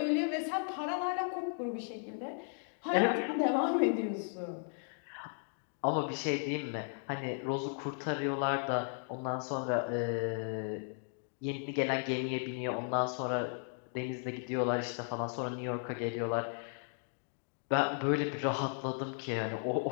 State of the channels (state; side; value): silent; right; 54 dB below the other